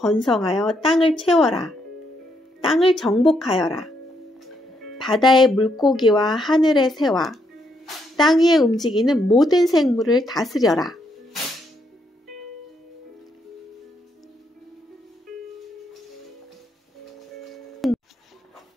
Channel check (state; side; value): normal; both; correlation 0.76